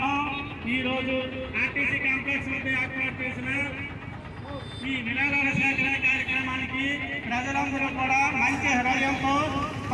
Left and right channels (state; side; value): identical; both; correlation 1.00